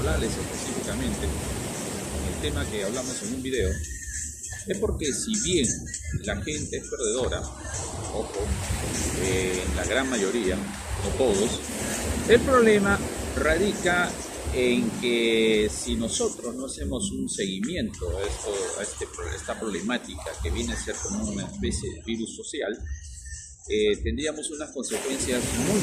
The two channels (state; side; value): identical; both; correlation 1.00